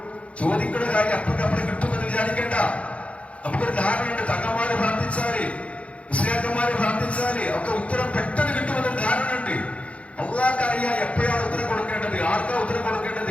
ചോദിക്കുന്ന കാര്യം അപ്പുറം കിട്ടുമെന്ന് വിചാരിക്കേണ്ട. നമുക്കൊരു ധാരണയുണ്ട്, തങ്ങന്മാര് പ്രാർത്ഥിച്ചാല്, മുസ്ലിയാക്കന്മാര് പ്രാർത്ഥിച്ചാല് ഒക്കെ ഉത്തരം പെട്ടെന്ന് കിട്ടുമെന്നൊരു ധാരണയുണ്ട്. അള്ളാഹ്ക്ക് അറിയാം എപ്പോഴാണ് ഉത്തരം കൊടുക്കേണ്ടത്, ആർക്കാ ഉത്തരം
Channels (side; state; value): right; late; 0.063 ms